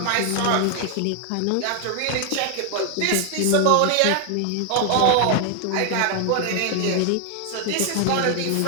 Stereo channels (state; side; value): different; both; correlation 0.00